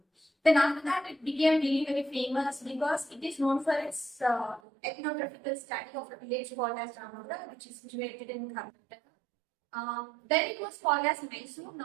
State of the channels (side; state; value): left; drops out; at 4.6 s